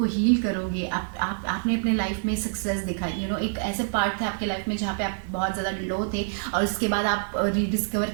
हील करोगे, आपने अपने लाइफ में सक्सेस दिखाई, एक ऐसे पार्ट था आपके लाइफ में जहाँ पे आप बहुत ज़्यादा लो थे, और उसके बाद आप रीडिस्कवर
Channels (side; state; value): left; silent; digital silence